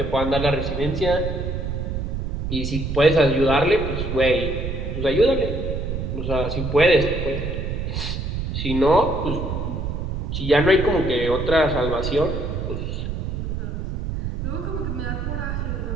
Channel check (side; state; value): right; noise; rumble, 3 dB below the sound